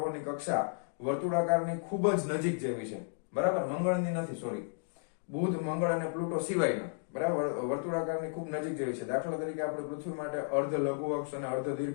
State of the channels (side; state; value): right; silent; digital silence